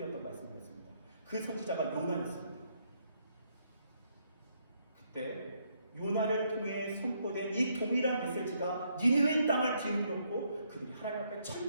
말씀이었습니다. 그 선지자가 요나였습니다. 그때 요나를 통해 선포된 이 동일한 메시지가 니느웨 땅을 뒤흔들었고 그들이 하나님 앞에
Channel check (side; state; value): both; inverted; correlation -0.73